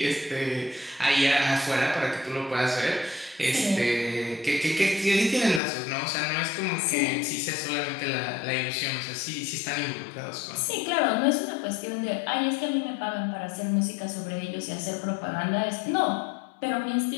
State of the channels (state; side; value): drops out; right; at 5.6 s